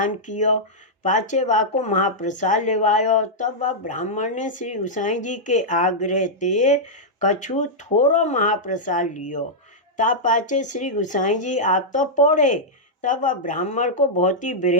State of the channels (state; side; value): normal; both; correlation -0.08